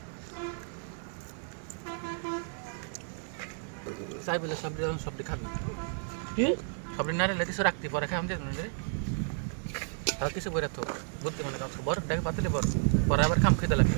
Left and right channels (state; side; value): silent; left; 57 dB below the other